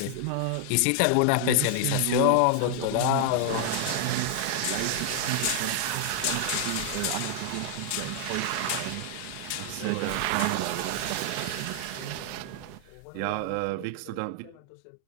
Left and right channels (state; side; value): different; both; correlation 0.00